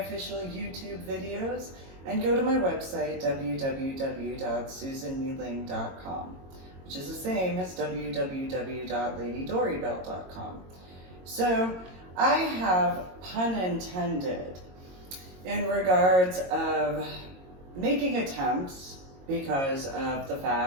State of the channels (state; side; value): late; left; 22 ms